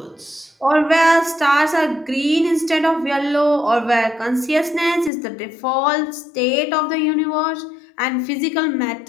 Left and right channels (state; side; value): drops out; right; at 5.1 s